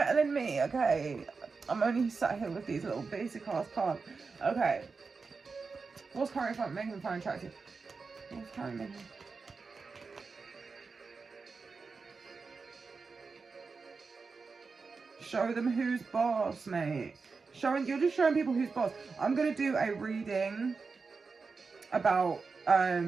than me, okay? I'm only sat here with these little basic ass cards. Okay. What's currently making them find attractive? What's currently making... Show them who's boss, mate. You're just showing people who's boss. I'm gonna do a reading about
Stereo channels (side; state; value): left; quieter; 4.6 dB